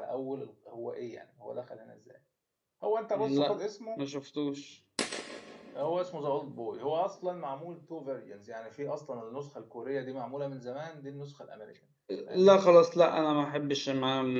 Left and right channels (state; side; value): identical; both; correlation 1.00